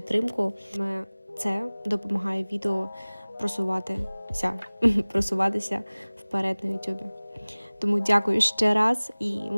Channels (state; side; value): inverted; both; correlation -1.00